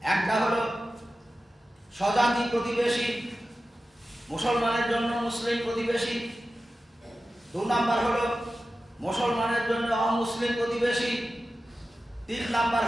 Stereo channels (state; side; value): normal; both; correlation 0.94